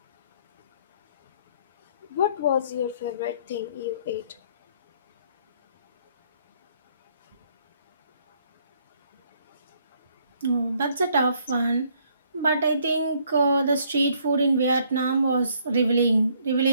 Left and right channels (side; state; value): both; inverted; correlation -0.66